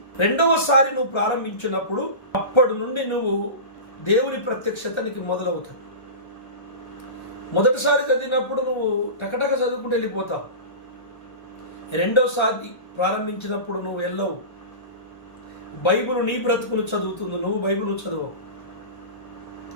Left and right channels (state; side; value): late; right; 1.3 ms